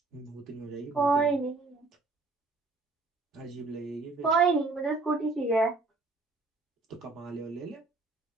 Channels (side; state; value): left; quieter; 3.6 dB